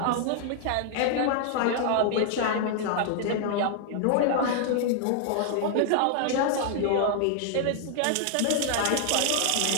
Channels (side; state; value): both; different; correlation 0.00